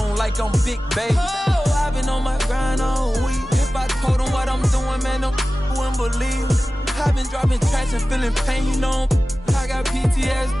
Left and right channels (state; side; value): normal; both; correlation 0.96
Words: like I'm Big Baby. Oh, I've been on my grind all week. If I told them what I'm doing, man, them wouldn't believe. I've been dropping tracks and feeling pain, you know. I got